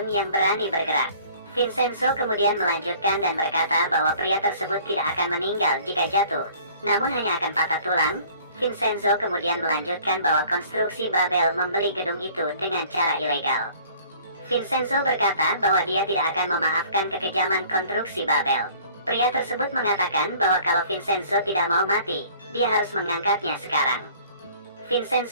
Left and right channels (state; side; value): inverted; both; correlation -0.52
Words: yang berani bergerak. Vincenzo kemudian melanjutkan dan berkata bahwa pria tersebut tidak akan meninggal jika jatuh, namun hanya akan patah tulang. Vincenzo kemudian melanjutkan bahwa konstruksi Babel membeli gedung itu dengan cara ilegal. Vincenzo berkata bahwa dia tidak akan memaafkan kekejaman konstruksi Babel. Pria tersebut mengatakan bahwa kalau Vincenzo tidak mau mati, dia harus mengangkatnya sekarang.